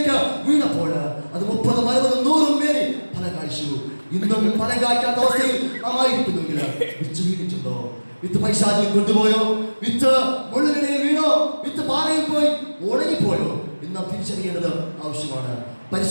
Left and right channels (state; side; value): inverted; both; correlation -1.00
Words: വീണപ്പോൾ അത് 30, 60, 100 പേര് ഫലം കായ്ച്ചു. ഇന്നും ഫലം കായ്ക്കാത്ത അവസ്ഥയിൽ നാം ആയിരിക്കുന്നെങ്കിൽ വിത്ത് വീണിട്ടുണ്ടോ? വിത്ത് പൈശാചിൽ കൊണ്ടുപോയോ? വിത്ത് മുള്ളിനിടയിൽ വീണോ? വിത്ത് പാറയിൽ പോയി ഉണങ്ങിപ്പോയോ? എന്ന് നാം തിരിച്ചറിയേണ്ടത് ആവശ്യമാണ്.